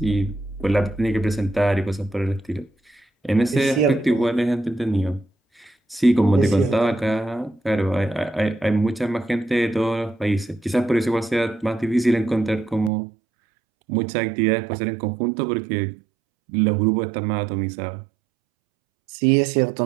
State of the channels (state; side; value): drops out; left; at 12.9 s